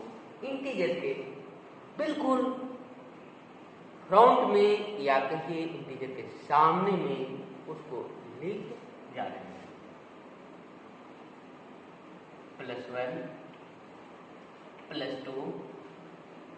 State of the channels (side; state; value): both; identical; correlation 1.00